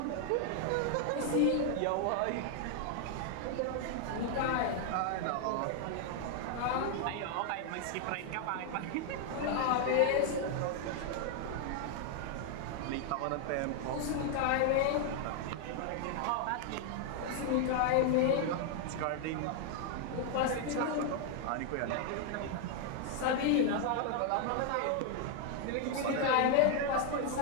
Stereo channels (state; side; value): different; both; correlation 0.00